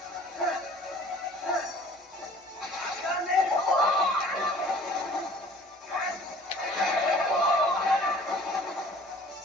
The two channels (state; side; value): normal; both; correlation 0.50